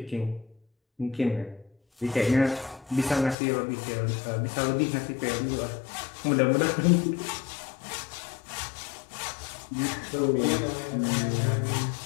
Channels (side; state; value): right; drops out; at 3.4 s